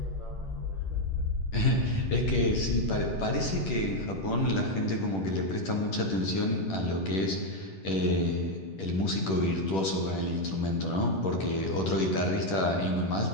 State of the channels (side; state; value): right; late; 10 ms